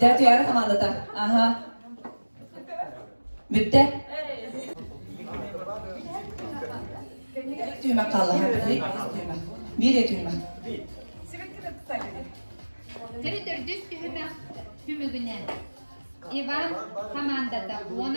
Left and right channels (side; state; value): both; inverted; correlation -1.00